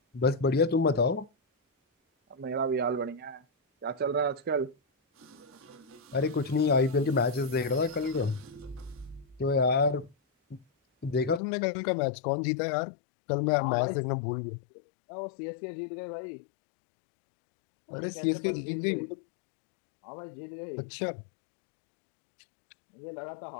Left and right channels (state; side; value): drops out; right; at 11.4 s